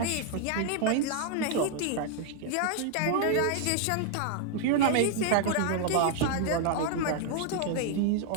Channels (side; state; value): both; different; correlation 0.00